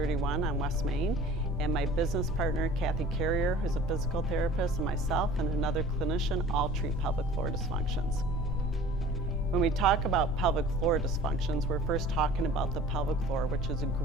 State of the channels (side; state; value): both; normal; correlation 0.45